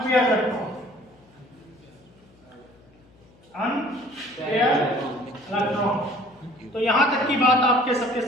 इलेक्ट्रॉन। Unpaired electron. तो यहां तक की बात आपके सबके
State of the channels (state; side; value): noise; left; hum, 29 dB below the sound